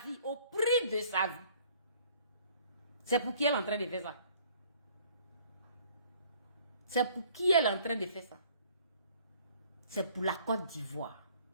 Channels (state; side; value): inverted; both; correlation -0.57